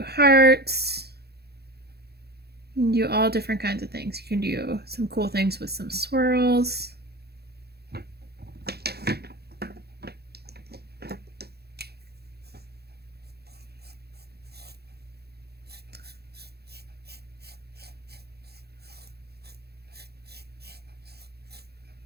hearts. You can do all different kinds of things. You can do some cool things with some swirls.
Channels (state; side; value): late; left; 0.47 ms